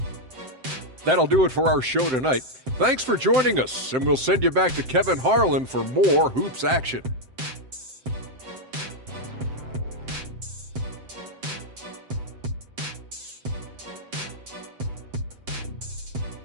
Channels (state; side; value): late; left; 7.7 ms